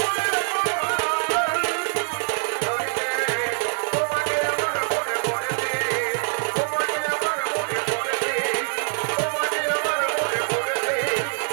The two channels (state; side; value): silent; left; 55 dB below the other